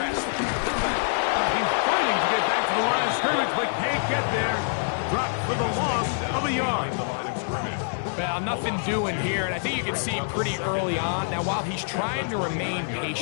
He's fighting to get back to the line of scrimmage, but can't get there. Dropped for the loss of a yard. Well, nothing doing here, and I think you can see pretty early on. Now, while he's trying to remain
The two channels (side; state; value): right; silent; digital silence